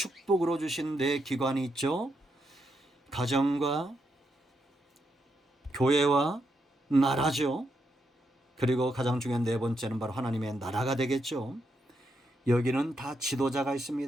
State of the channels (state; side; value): normal; both; correlation 0.81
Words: 주신 네 기관이 있죠. 가정과 교회와 나라죠. 그리고 가장 중요한 네 번째는 바로 하나님의 나라가 되겠죠. 여기는 다 지도자가